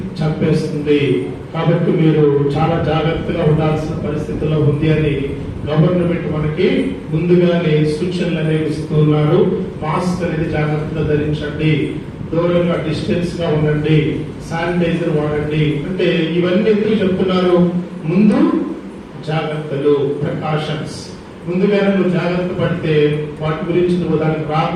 చంపేస్తుంది. కాబట్టి మీరు చాలా జాగ్రత్తగా ఉండాల్సిన పరిస్థితిలో ఉంది అని గవర్నమెంట్ మనకి ముందుగానే సూచనలు అనేవి ఇస్తున్నారు. మాస్క్ అనేది జాగ్రత్తగా ధరించండి, దూరంగా డిస్టెన్స్ గా ఉండండి, శానిటైజర్ వాడండి. అంటే ఇవన్నీ ఎందుకు చెప్తున్నారు? ముందు జాగ్రత్తలు, ప్రికాషన్స్. ముందుగానే నువ్వు జాగ్రత్త పడితే వాటి గురించి నువ్వు దానికి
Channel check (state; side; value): identical; both; correlation 1.00